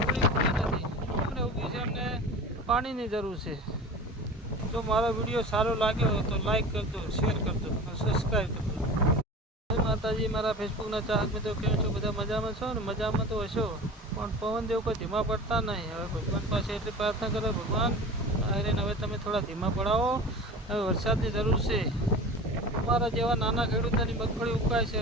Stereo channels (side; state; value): both; normal; correlation 0.35